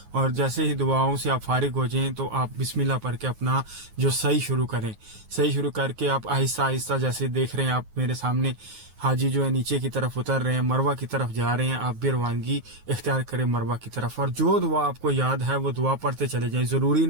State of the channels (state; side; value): late; left; 9.4 ms